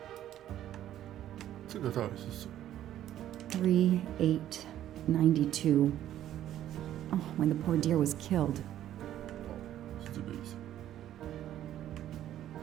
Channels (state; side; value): quieter; left; 12.1 dB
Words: 这个到底是什么？ 3892. Oh, when the poor deer was killed. 是这个意思。